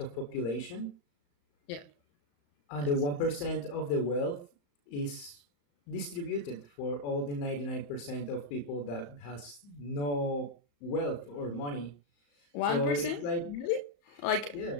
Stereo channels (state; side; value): late; right; 35 ms